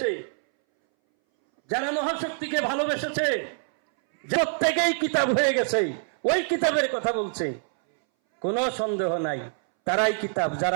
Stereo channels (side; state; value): left; silent; 61 dB below the other